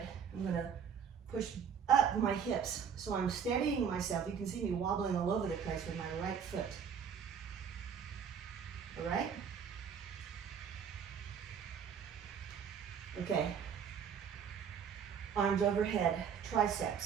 I'm gonna push up my hips. So I'm steadying myself. You can see me wobbling all over the place with my right foot. All right? Okay. Arms overhead,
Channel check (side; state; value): left; quieter; 7.3 dB